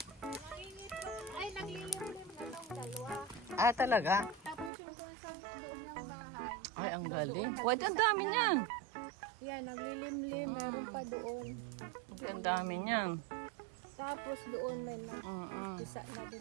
Ay, naglilimlim na ng dalawa. Ah, talaga? Tapos yung doon sa doon ng bahay. Ay, ang galing. Wait, ang dami niyan. Yan, naglilimlim. Meron pa doon. Ay, ang dami niyan. Tapos doon may isa na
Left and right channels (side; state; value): left; drops out; at 4.7 s